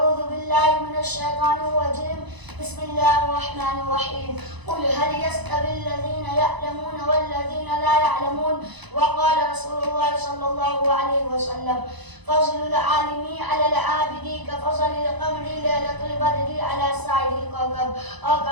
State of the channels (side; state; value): left; late; 1.0 ms